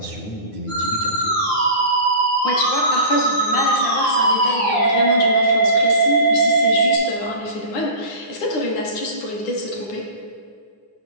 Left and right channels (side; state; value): right; late; 9.7 ms